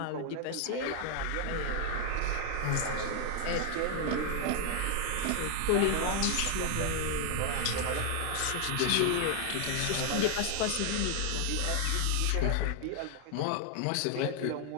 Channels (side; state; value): both; different; correlation 0.00